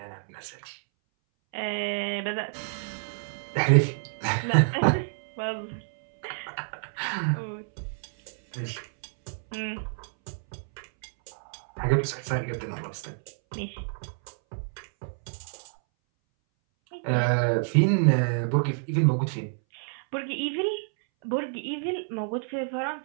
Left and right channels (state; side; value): silent; left; 59 dB below the other